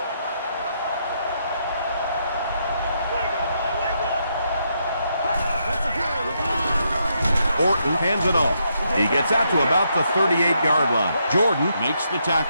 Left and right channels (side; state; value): both; inverted; correlation -0.78